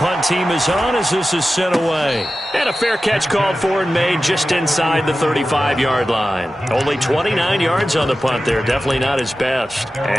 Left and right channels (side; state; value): both; normal; correlation 0.94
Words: team is on as this is sent away. And a fair catch called for and made just inside the 35-yard line. Only 29 yards on the punt there. Definitely not his best.